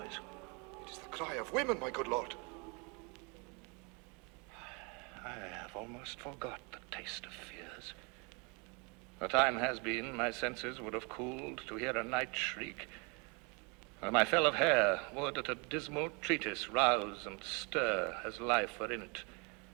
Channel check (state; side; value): quieter; left; 31.9 dB